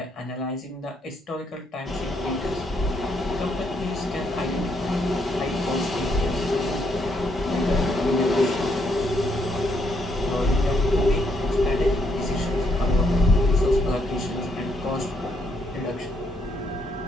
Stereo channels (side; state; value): both; normal; correlation 0.74